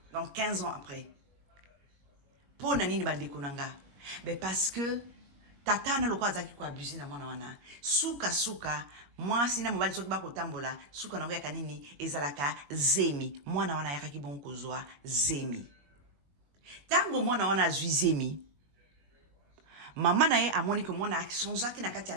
donc 15 ans après mpo na nini bandeko na nga parce que tata na lokola azalaki koabuse na mwana wana suka mwasi na mobali soki bakotambola suka nango yaka nini ezalaka zemi mwana wana ayakaki bongo kozwa zemi Tango mwana wana azwi zemi. Maman na ye amoni que mwana sonzaki na kati ya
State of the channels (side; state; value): left; late; 21 ms